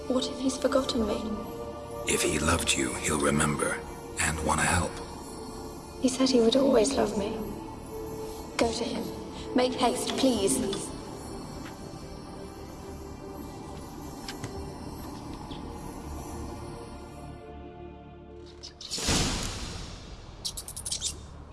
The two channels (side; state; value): both; identical; correlation 1.00